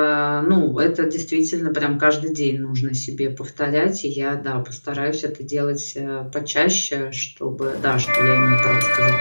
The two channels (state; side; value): inverted; both; correlation -1.00